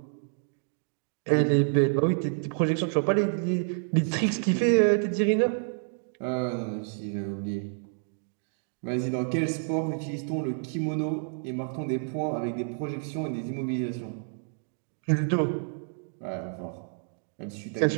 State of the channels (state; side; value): silent; left; digital silence